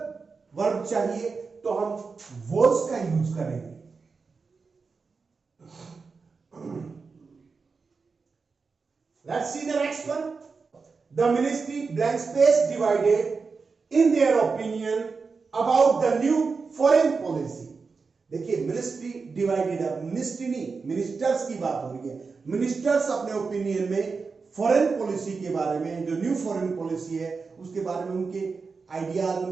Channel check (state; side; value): quieter; left; 4.7 dB